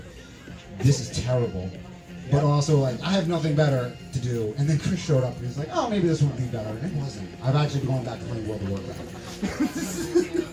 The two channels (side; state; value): both; identical; correlation 1.00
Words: this is terrible. But also like, I have nothing better to do. And then Chris showed up and he's like, oh, maybe this would be better. And it wasn't. I've actually been going back to playing World of Warcraft.